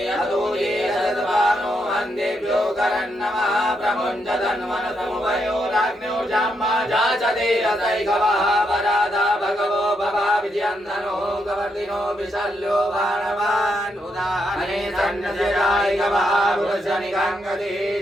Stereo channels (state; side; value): normal; both; correlation 0.79